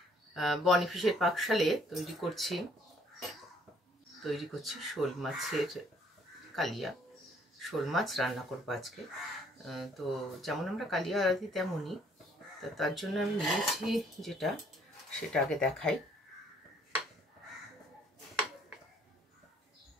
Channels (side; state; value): both; normal; correlation 0.63